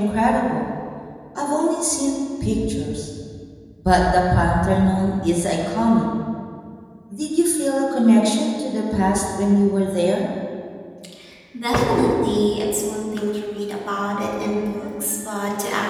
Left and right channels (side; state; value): both; identical; correlation 1.00